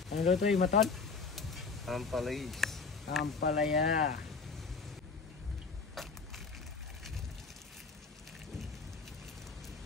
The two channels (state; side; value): quieter; right; 4.7 dB